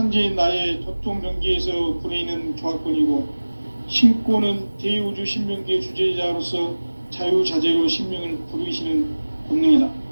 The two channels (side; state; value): both; inverted; correlation -1.00